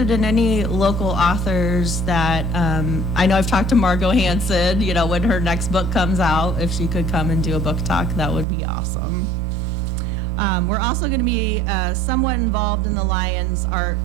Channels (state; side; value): drops out; left; at 8.5 s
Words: in any local authors that, I know I've talked to Margot Hansen, when her next book comes out, if she could come and do a book talk, that would be awesome. We're also going to be somewhat involved in the Lions Art